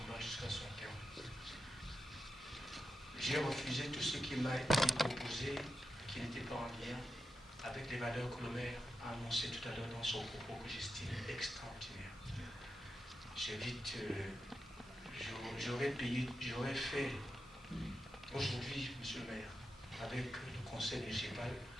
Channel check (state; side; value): normal; both; correlation 0.88